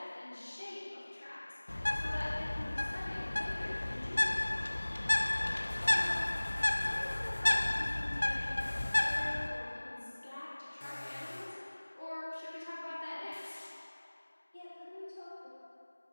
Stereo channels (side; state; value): both; inverted; correlation -1.00